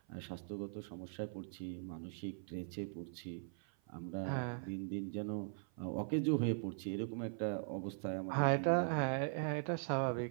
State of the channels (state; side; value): silent; left; 51 dB below the other